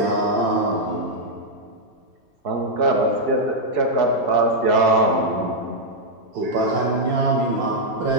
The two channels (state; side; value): late; left; 2.7 ms